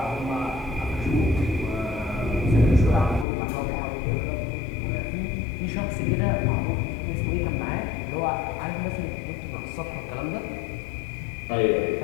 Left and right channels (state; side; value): drops out; right; at 3.2 s